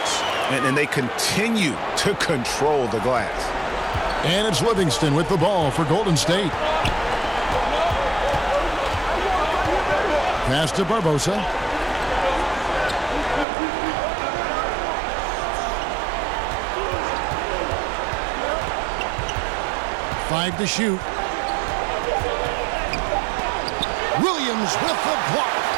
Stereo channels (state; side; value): drops out; left; at 13.5 s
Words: And they continue to control the glass. And it's Livingston with the ball for Golden State. Pass to Barbosa. Five to shoot. Williams with the block.